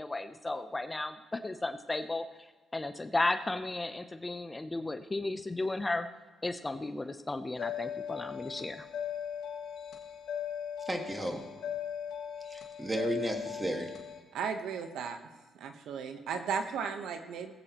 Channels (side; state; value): both; normal; correlation 0.84